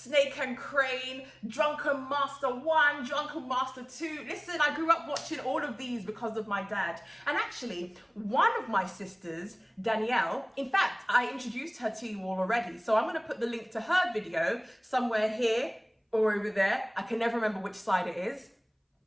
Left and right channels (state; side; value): identical; both; correlation 1.00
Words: and Crane, Drunken Master 1, Drunken Master 2. Listen, I grew up watching all of these because of my dad. And actually, one of my sisters, Danielle, in fact, I introduced her to you all already. So I'm gonna put the link to her video somewhere here or over there. I can never remember which side it is.